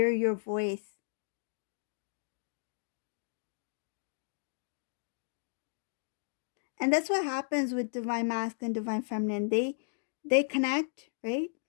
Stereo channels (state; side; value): silent; right; digital silence